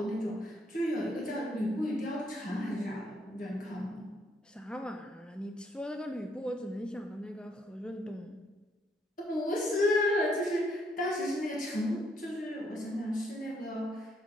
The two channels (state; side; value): normal; both; correlation 0.71